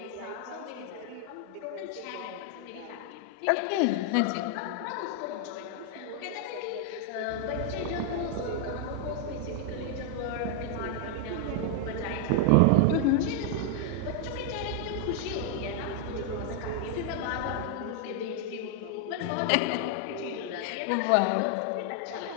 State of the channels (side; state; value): both; different; correlation 0.00